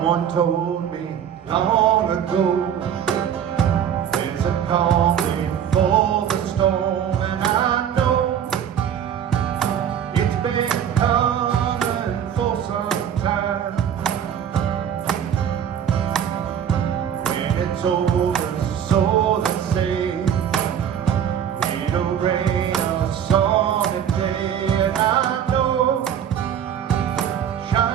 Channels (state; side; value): quieter; left; 9.0 dB